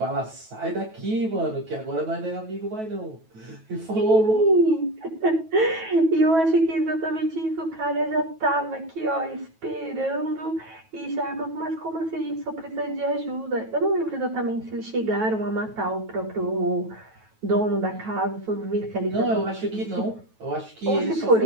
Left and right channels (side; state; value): left; late; 9.2 ms